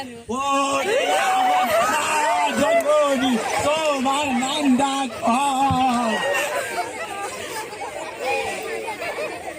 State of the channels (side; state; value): both; identical; correlation 1.00